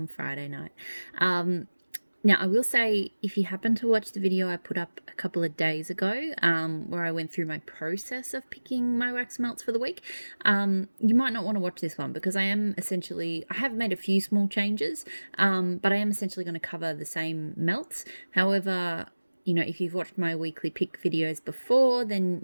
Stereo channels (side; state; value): both; inverted; correlation -1.00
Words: Friday night. Now, I will say, if you happen to watch the video I put up a couple of days ago, where I went through my process of picking my wax melts for the week, you might not want to watch this one because I have made a few small changes, but I am essentially going to cover the same melts. However, if you've watched my weekly pick videos before, then